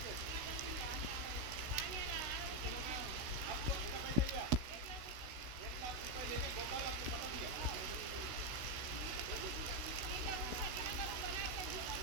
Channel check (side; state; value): left; late; 16 ms